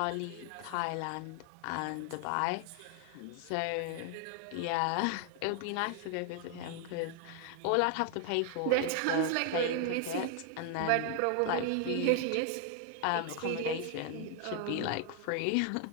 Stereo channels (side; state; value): both; different; correlation 0.00